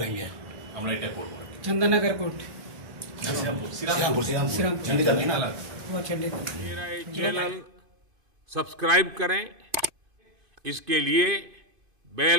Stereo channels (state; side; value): late; left; 2.5 ms